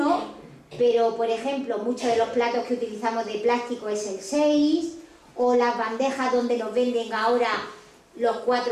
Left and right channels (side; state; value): both; identical; correlation 1.00